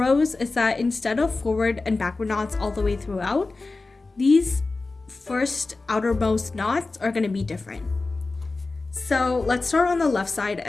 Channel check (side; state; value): right; quieter; 3.5 dB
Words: is that instead of forward and backward knots all the way throughout, these first outermost knots are gonna be different. So let's start on the left side